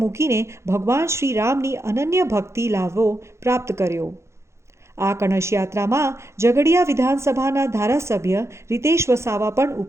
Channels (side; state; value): left; late; 0.13 ms